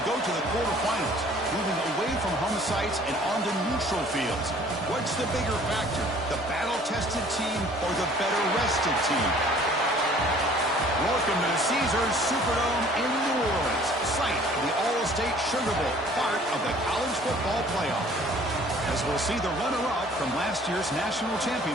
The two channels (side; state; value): both; normal; correlation 0.53